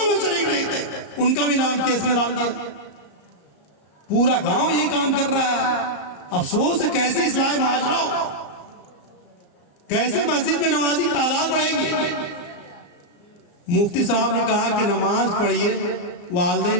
میں شریک نہیں تھے، ان کا بھی نام کیس میں ڈال دیا۔ پورا گاؤں یہی کام کر رہا ہے۔ افسوس ہے، کیسے اصلاح معاشرہ ہو، کیسے مسجد میں نمازی کی تعداد بڑھے گی۔ مفتی صاحب نے کہا کہ نماز پڑھیے،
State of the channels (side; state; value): right; late; 35 ms